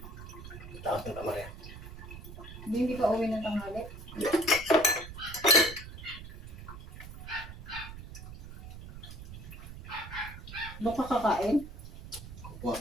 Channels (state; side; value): noise; right; rumble, 12 dB below the sound